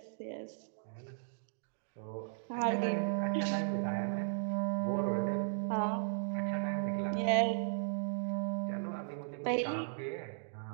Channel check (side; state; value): left; silent; digital silence